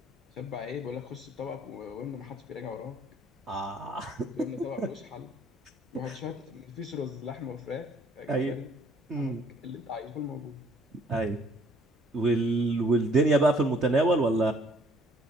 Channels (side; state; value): both; normal; correlation 0.61